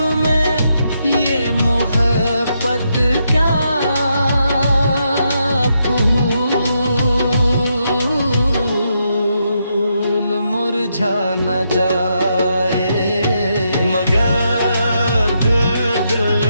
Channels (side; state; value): both; inverted; correlation -0.80